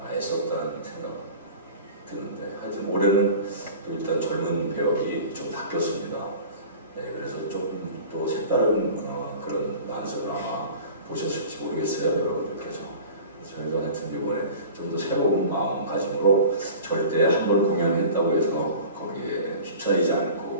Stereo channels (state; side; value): inverted; both; correlation -0.40